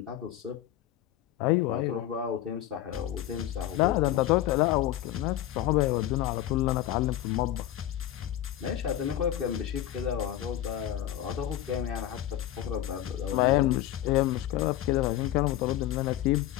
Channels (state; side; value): quieter; right; 12.7 dB